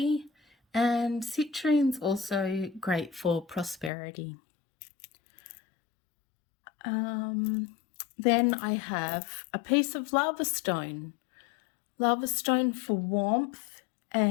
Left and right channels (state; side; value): drops out; right; at 3.9 s